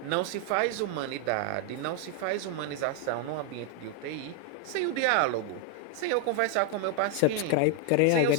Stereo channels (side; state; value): both; different; correlation 0.01